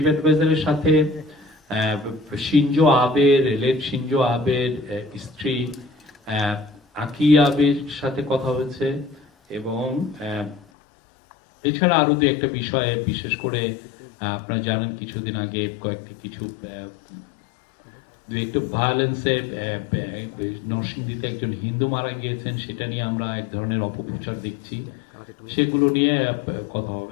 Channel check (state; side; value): drops out; right; at 10.6 s